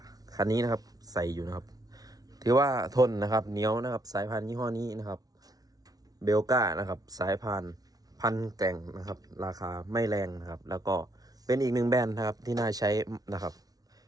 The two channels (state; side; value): late; left; 0.18 ms